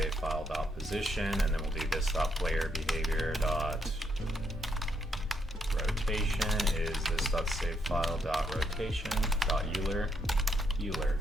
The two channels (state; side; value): normal; both; correlation 0.76